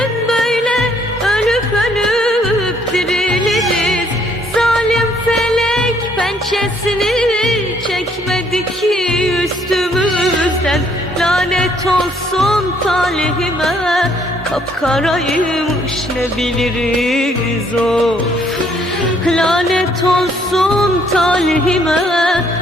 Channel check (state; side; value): normal; both; correlation 0.66